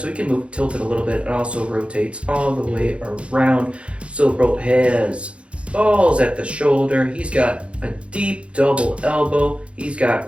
he can move tilted a little bit. It also rotates all the way around. Silverbolt has balls at the shoulder. He's got a deep double elbow. He's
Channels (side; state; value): left; late; 0.060 ms